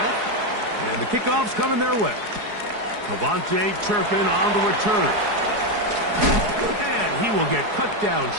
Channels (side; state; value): left; late; 4.7 ms